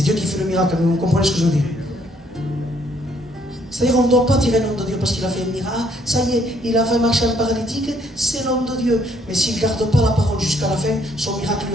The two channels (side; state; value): both; normal; correlation 0.67